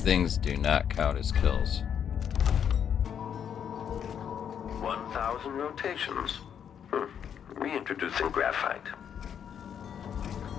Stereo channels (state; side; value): quieter; right; 8.4 dB